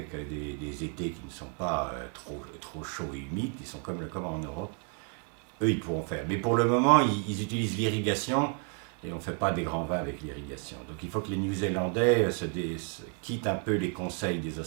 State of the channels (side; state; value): left; quieter; 36.2 dB